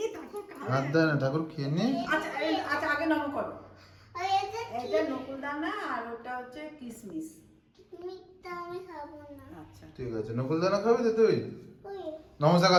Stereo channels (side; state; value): both; identical; correlation 1.00